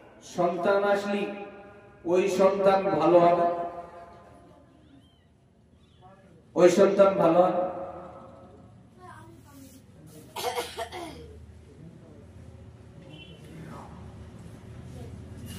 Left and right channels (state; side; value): identical; both; correlation 1.00